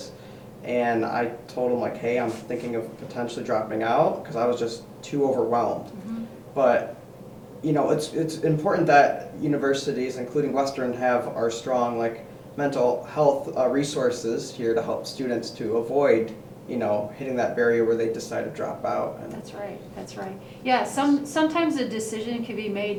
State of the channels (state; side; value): identical; both; correlation 1.00